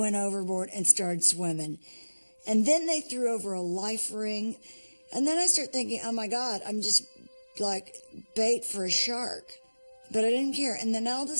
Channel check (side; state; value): both; inverted; correlation -1.00